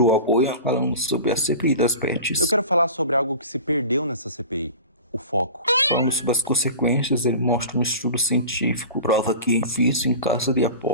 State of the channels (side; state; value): both; inverted; correlation -0.35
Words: a bolha falando sobre a CPI das bets. Eu quero falar sobre algo que se perdeu nessa CPI. O foco. Falando sobre as consequências, ele mostra um estudo científico, prova que vício em casa de